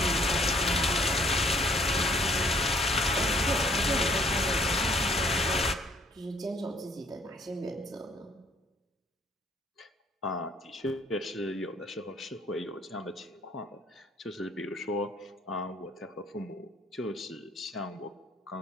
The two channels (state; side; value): normal; both; correlation 0.62